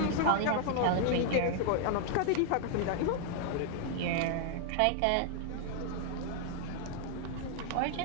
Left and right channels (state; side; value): different; both; correlation 0.00